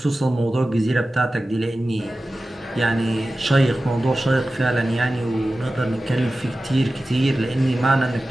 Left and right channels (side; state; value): both; normal; correlation 0.95